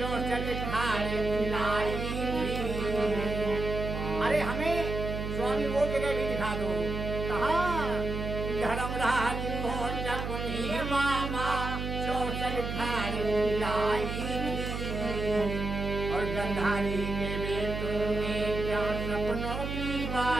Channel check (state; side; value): noise; right; hum, 4 dB below the sound